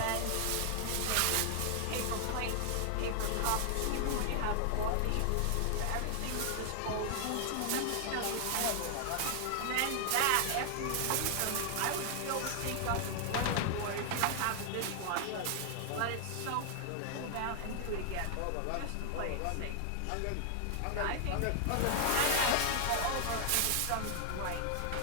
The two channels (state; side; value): different; both; correlation 0.00